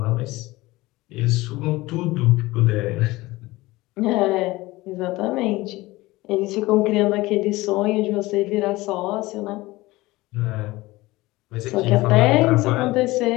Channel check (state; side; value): quieter; right; 19.8 dB